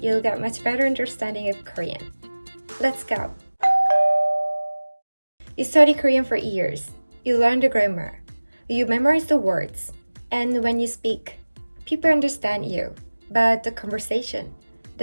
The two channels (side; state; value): both; inverted; correlation -1.00